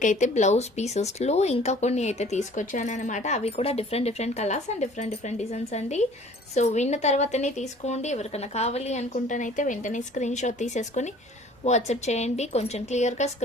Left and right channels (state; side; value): normal; both; correlation 0.51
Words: అయితే బ్లౌజ్ పీసెస్లో ఇంకా కొన్ని అయితే తీసుకొచ్చాను అనమాట. అవి కూడా different colours and different designs అండి. సో విన్న తర్వాతనే తీసుకోండి. ఎవరికైనా కావాలి అనుకుంటానైతే వెంటనే స్క్రీన్ షాట్ తీసేసుకొని వాట్సాప్ చేయండి. కొంచెం క్లియర్గా